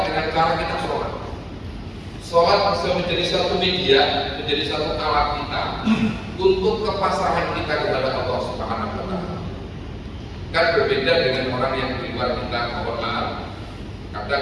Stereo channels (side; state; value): both; identical; correlation 1.00